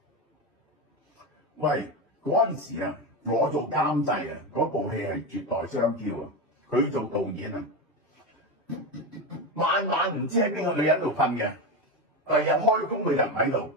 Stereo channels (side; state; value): both; normal; correlation 0.15